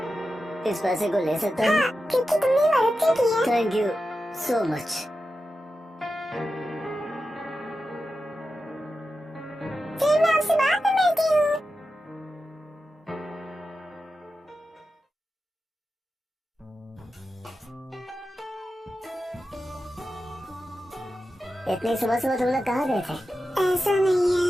इस पैसे को ले सकता हूँ? हाँ, क्योंकि तुमने मदद की है। Thank you so much. फिर मैं आपसे बात में मिलती हूँ। इतनी सुबह सुबह तुम लोग कहाँ गए थे? ऐसा नहीं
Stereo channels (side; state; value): both; normal; correlation 0.91